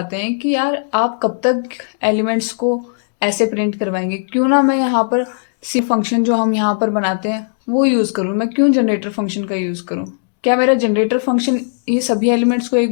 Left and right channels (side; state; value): right; silent; digital silence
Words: हैं कि यार आप कब तक एलिमेंट्स को ऐसे प्रिंट करवाएंगे, क्यों ना मैं यहाँ पर सी फंक्शन जो हम यहाँ पर बनाते हैं वो यूज़ करूँ। मैं क्यों जनरेटर फंक्शन का यूज़ करूँ? क्या मेरा जनरेटर फंक्शन ये सभी एलिमेंट्स को